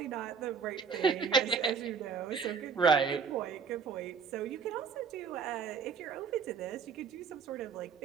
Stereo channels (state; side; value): quieter; left; 5.9 dB